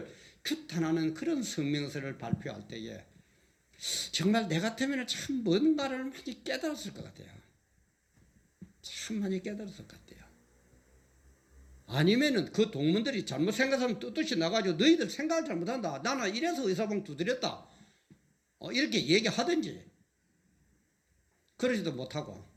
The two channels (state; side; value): identical; both; correlation 1.00